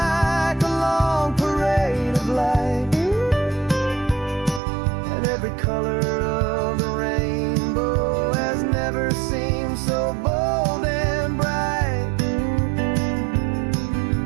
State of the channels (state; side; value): drops out; left; at 4.6 s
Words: a long parade of light, and every color of the rainbow has never seemed so bold and bright.